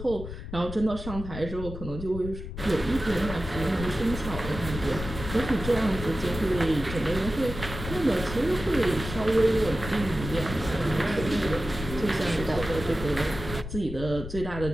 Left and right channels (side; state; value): left; noise; rumble, 8 dB below the sound